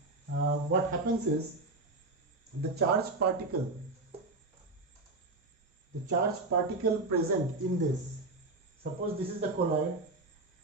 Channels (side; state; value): left; quieter; 3.1 dB